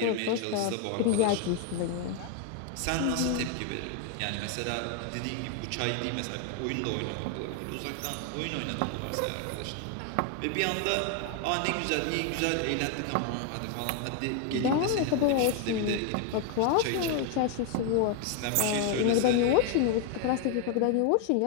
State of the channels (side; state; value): both; different; correlation 0.01